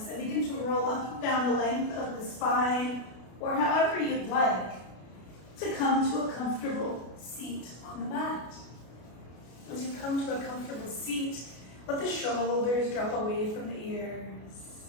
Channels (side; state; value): right; late; 33 ms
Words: and begin to roll up and down the length of the spine, or however you'd like, to come to a comfortable seat on the mat. As you come to a comfortable seat, let the shoulders drop away from the